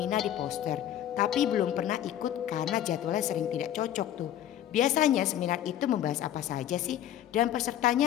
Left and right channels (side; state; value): right; quieter; 11.4 dB